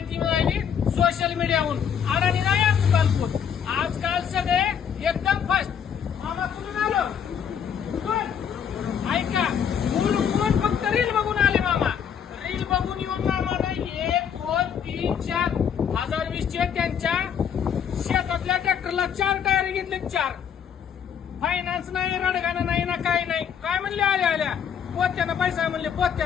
मिळाली सोशल मीडियाहून. अडाणी नाही आजकाल. आजकाल सगळे एकदम फास्ट. मामा कुठून आलो? ऐका, कोण फक्त रील बघून आले मामा. रील बघून येऊन मामा नाही 1 2 3 4 2020 त्यांच्या शेतातल्या ट्रॅक्टरला 4 टायर घेतले. 4 फायनान्स नाही, रडगाणं नाही ना, काही नाही. काय म्हणले आल्या पोत्यानं पैसा म्हणले.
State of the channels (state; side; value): quieter; right; 8.0 dB